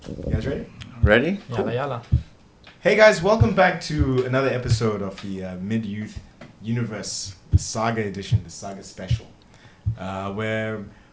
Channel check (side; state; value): both; identical; correlation 1.00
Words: You guys ready? Ready? Yalla yalla. Hey guys, welcome back to another episode of the MidYouth Universe, the Saga edition, the Saga special, where